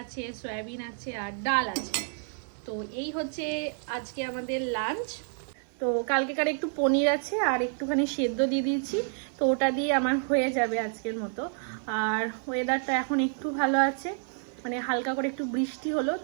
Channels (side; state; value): left; silent; 58 dB below the other